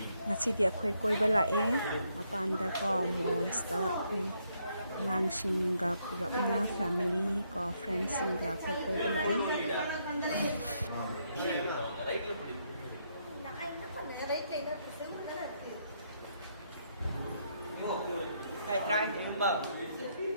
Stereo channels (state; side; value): inverted; both; correlation -0.75